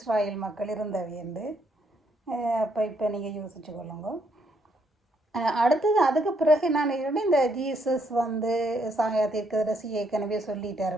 மக்கள் இருந்தவையண்டு. இப்போ நீங்கள் யோசிச்சு கொள்ளுங்க. அடுத்தது அதுக்கு பிறகு நான் இந்த ஜீசஸ் தீர்க்கதரிசி ஏற்கனவே சொல்லிட்டார்,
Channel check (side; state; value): both; normal; correlation 0.73